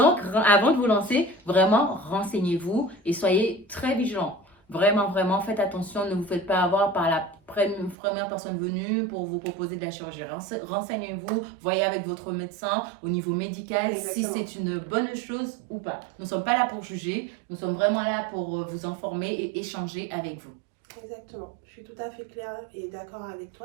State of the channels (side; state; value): left; drops out; at 8.0 s